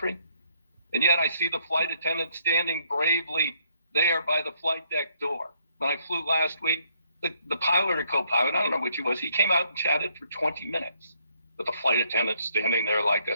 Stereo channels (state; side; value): inverted; both; correlation -0.70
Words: And yet I see the flight attendant standing bravely there by the flight deck door. When I flew last week, the pilot or co-pilot, I don't know which he was, he came out and chatted for 20 minutes with the flight attendant standing there like